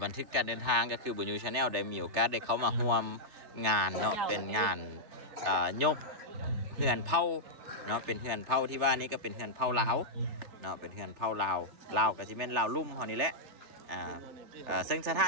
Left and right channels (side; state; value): left; late; 3.3 ms